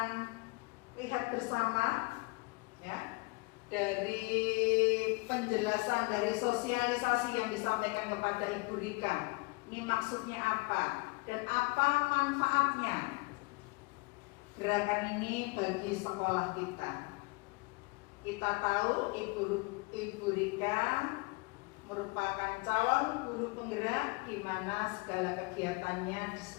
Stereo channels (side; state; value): right; quieter; 27.1 dB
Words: lihat bersama ya, dari penjelasan dari sosialisasi yang disampaikan kepada Ibu Rika. Ini maksudnya apa dan apa manfaatnya gerakan ini bagi sekolah kita. Kita tahu Ibu Rika merupakan calon guru penggerak di mana segala kegiatannya di